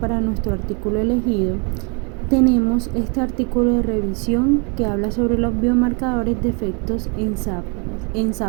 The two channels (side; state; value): left; quieter; 34.6 dB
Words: nuestro artículo elegido, tenemos este artículo de revisión que habla sobre los biomarcadores de efectos en